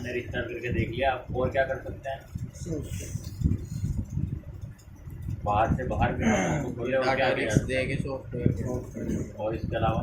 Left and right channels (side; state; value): both; identical; correlation 1.00